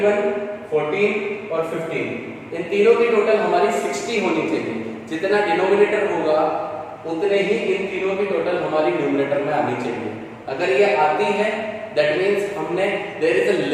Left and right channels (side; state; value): both; identical; correlation 1.00